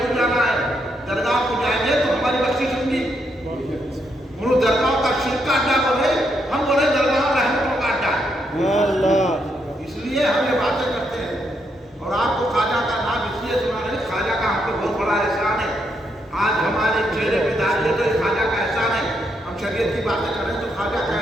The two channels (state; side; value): normal; both; correlation 0.78